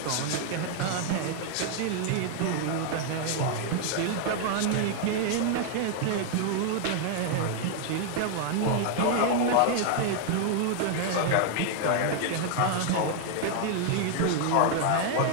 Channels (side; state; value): both; different; correlation 0.00